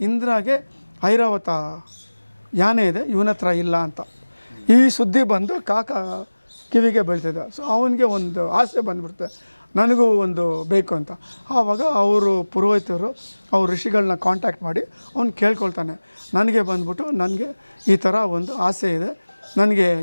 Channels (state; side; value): inverted; both; correlation -1.00